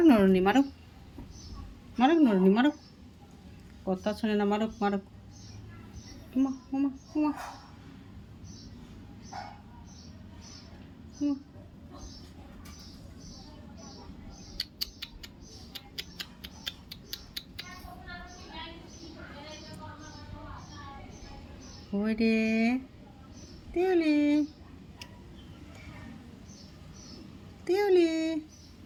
নরুনি, মারুক মারুক নরুনি, মারুক। কথা শোনে না, মারুক মারুক। উমা উমা উমা উমা। ওই রে তিউলি, তিউলি,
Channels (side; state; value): both; identical; correlation 1.00